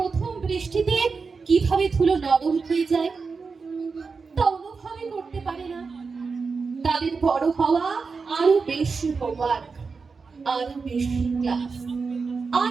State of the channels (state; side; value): quieter; left; 4.8 dB